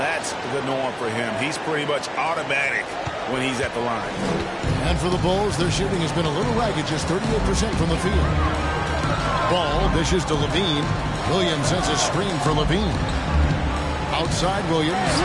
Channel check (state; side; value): identical; both; correlation 1.00